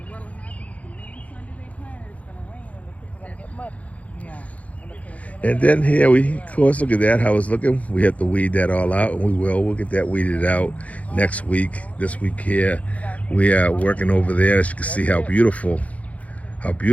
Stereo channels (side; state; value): right; late; 0.067 ms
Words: what'll happen is the main Sunday they planted, it's gonna rain and the people are gonna get muddy. Yeah. And then here of course, look at that, how it's looking. We have to weed that all out, and we'll get that weeded out next week. This week here, we are working over there. As you can see how beautiful